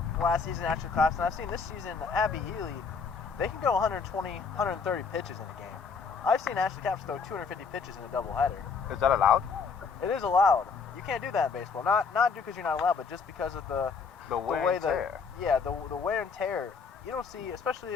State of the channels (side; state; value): right; quieter; 5.3 dB